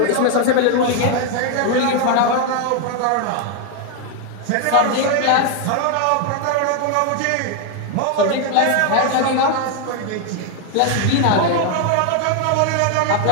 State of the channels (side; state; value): both; different; correlation 0.01